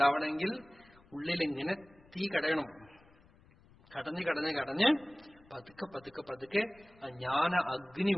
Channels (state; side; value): noise; left; rumble, 27 dB below the sound